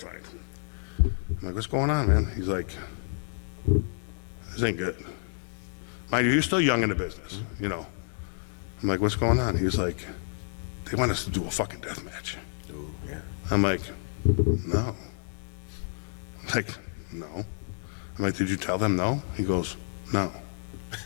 I'm like, "What's going on, man?" He's like, "This ain't good." Mind you, he's still young in the business, you know. I'm like, "What's going on?" He's like, they want us to do a fucking death match. Oh, yeah. I'm like, no. I'm like, no. I'm like, did you tell them no? He goes, no.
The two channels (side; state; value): right; silent; digital silence